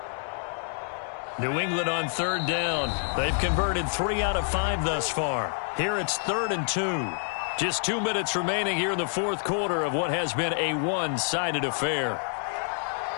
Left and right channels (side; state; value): right; silent; 60 dB below the other